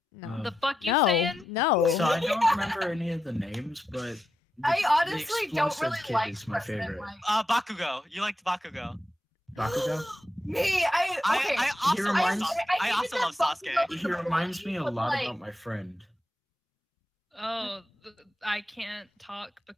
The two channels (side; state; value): both; normal; correlation 0.87